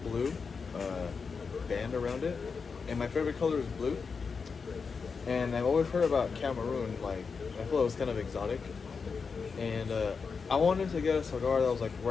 band around it. And my favorite color is blue. And I've always heard about Cameroon, like, I feel it was kind of exotic. And I wanted to get a cigar that was like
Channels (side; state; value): right; quieter; 5.3 dB